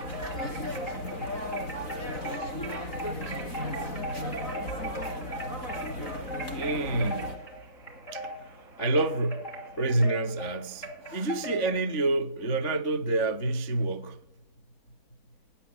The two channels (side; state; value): right; late; 4.0 ms